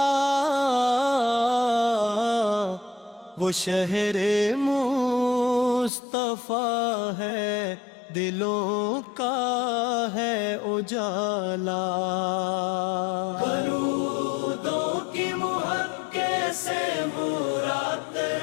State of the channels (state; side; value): drops out; right; at 5.9 s